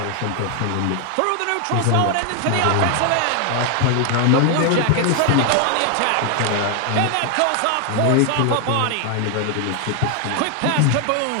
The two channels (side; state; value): both; different; correlation 0.00